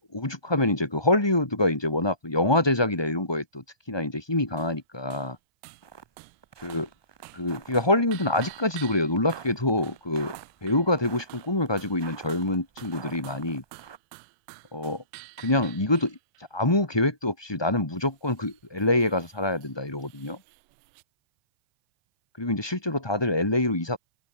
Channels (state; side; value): late; right; 1.2 ms